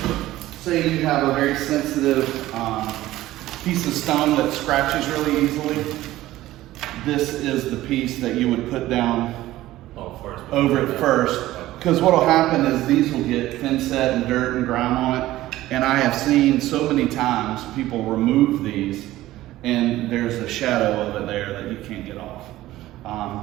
Say you have a very sensitive piece of stone that scratches really easily. This is the piece that you would put down over it first. Because what will happen is these will get thin set and dirt and grime on it. And I have seen so many times people remove these and there's a shadow of it there that you can't get off.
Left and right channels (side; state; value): left; quieter; 15.7 dB